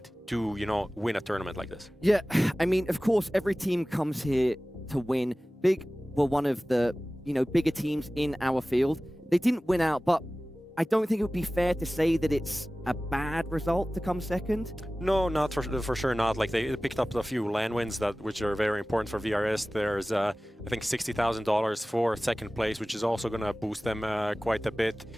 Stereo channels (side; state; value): both; normal; correlation 0.97